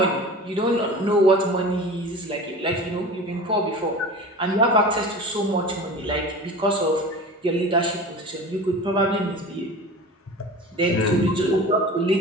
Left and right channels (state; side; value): normal; both; correlation 0.36